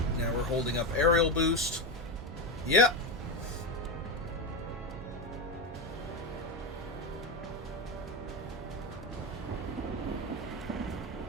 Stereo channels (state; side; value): normal; both; correlation 0.15